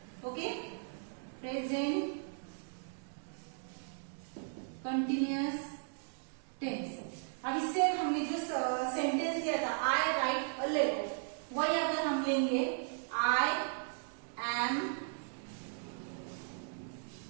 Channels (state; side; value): silent; left; digital silence